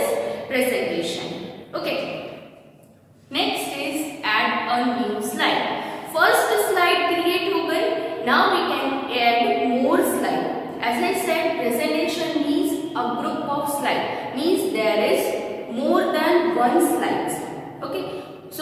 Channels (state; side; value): identical; both; correlation 1.00